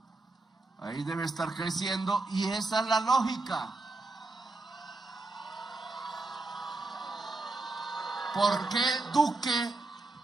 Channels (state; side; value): quieter; left; 3.2 dB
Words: Ahí debe estar creciendo, y esa es la lógica. ¿Por qué Duque